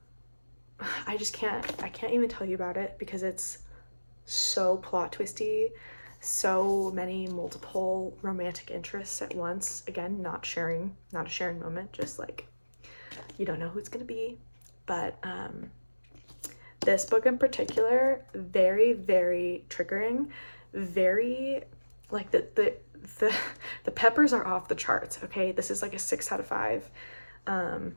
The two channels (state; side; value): inverted; both; correlation -1.00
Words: I can't even tell you about it because it's so plot twisty, so many multiple romantic interests at once. Again, not a sharing moment, just like, you don't know who it's gonna be. But this book in particular, very, very triggering, very, like, the peppers are off the charts, okay? This is like a 6 out of 5